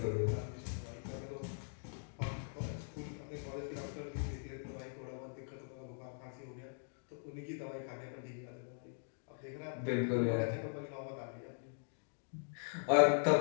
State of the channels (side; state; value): right; silent; digital silence